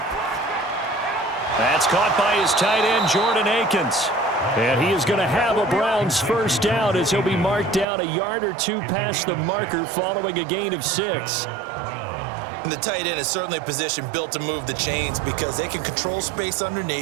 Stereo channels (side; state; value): left; drops out; at 7.9 s